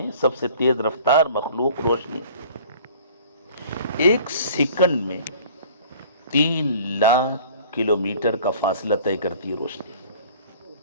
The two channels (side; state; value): both; inverted; correlation -0.48